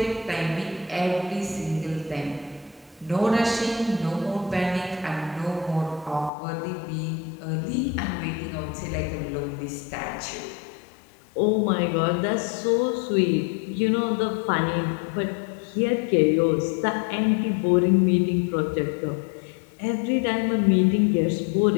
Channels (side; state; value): right; drops out; at 6.3 s